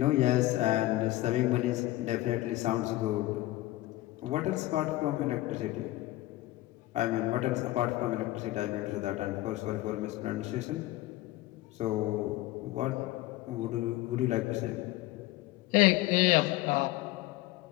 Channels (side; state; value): right; quieter; 17.3 dB